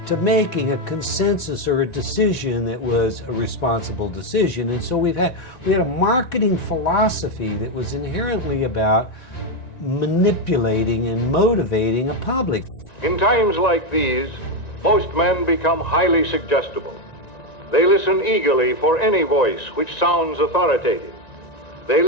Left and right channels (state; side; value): late; right; 1.9 ms